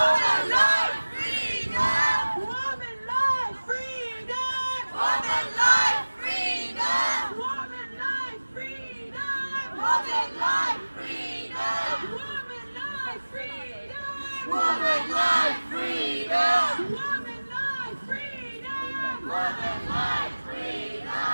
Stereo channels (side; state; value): both; inverted; correlation -1.00